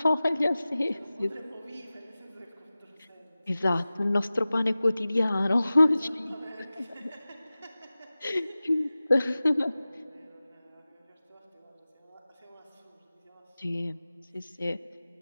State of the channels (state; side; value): inverted; both; correlation -0.97